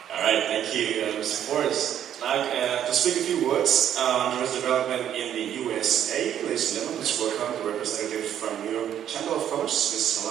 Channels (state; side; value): quieter; left; 10.1 dB